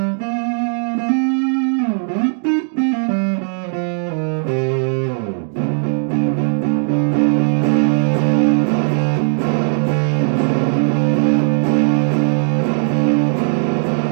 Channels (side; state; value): left; silent; 68 dB below the other